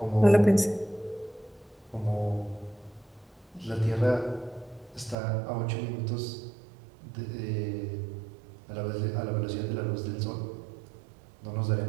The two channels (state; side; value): drops out; left; at 5.2 s